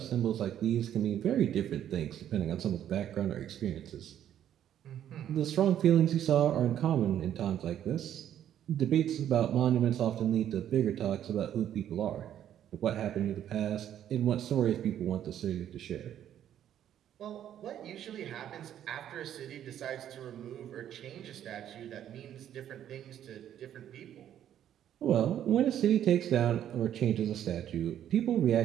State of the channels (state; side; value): quieter; left; 10.6 dB